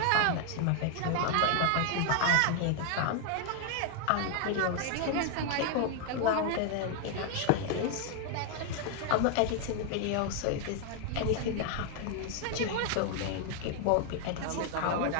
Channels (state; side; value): different; both; correlation 0.00